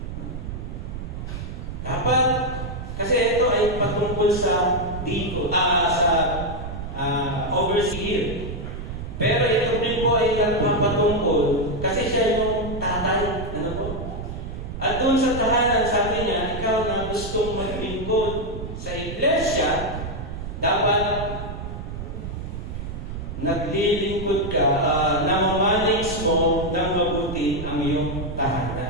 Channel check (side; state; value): right; noise; rumble, 7 dB below the sound